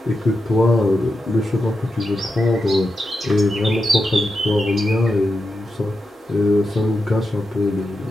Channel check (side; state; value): both; normal; correlation 0.88